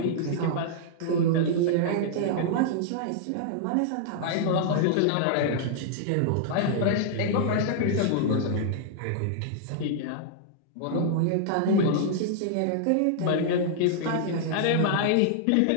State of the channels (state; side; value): different; both; correlation -0.01